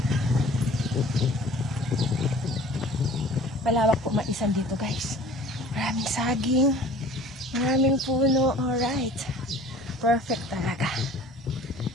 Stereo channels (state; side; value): normal; both; correlation 0.47